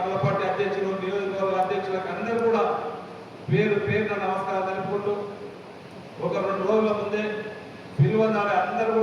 పార్టీ అధ్యక్షులు, నియోజకవర్గ అధ్యక్షులకు అందరూ కూడా పేరు పేరున నమస్కారం తెలుపుకుంటూ, ఒక 2 రోజుల ముందే పిలువనాలి అందరూ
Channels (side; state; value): both; identical; correlation 1.00